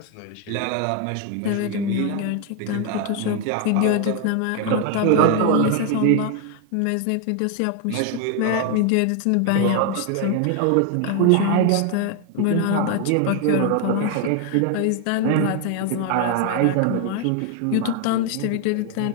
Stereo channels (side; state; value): both; different; correlation 0.00